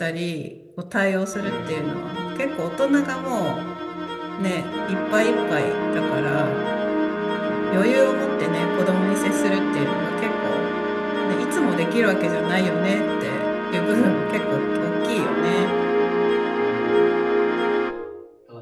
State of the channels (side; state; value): both; identical; correlation 1.00